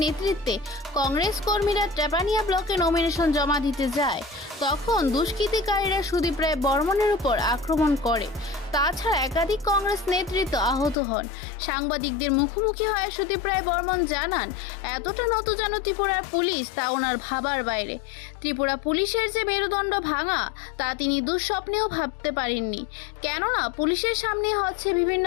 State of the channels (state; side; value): drops out; right; at 11.0 s